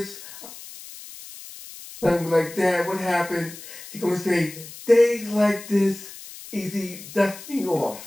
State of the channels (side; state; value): left; noise; hiss, 15 dB below the sound